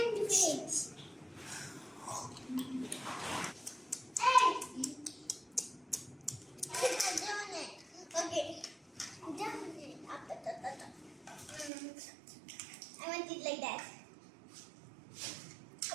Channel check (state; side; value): drops out; left; at 11.7 s